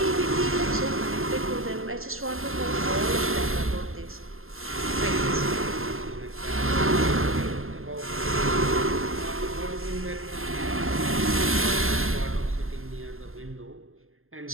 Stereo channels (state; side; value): late; left; 0.61 ms